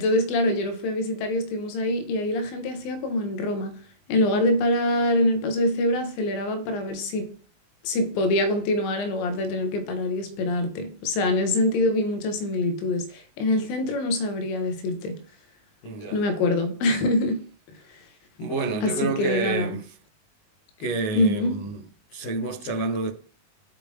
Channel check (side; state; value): right; late; 19 ms